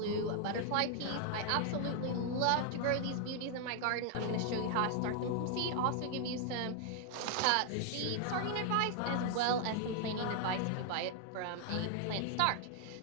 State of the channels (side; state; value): both; different; correlation 0.00